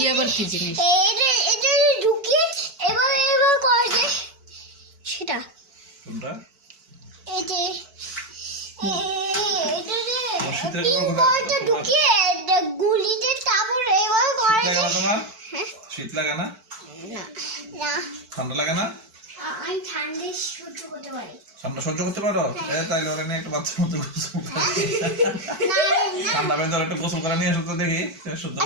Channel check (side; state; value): left; late; 4.5 ms